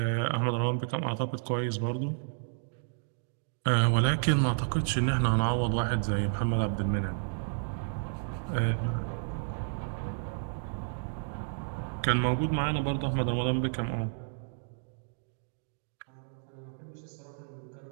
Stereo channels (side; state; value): left; silent; digital silence